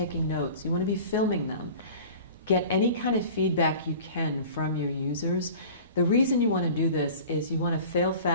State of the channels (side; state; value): both; inverted; correlation -0.41